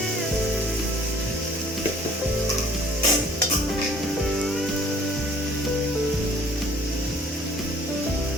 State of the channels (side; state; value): both; normal; correlation 0.55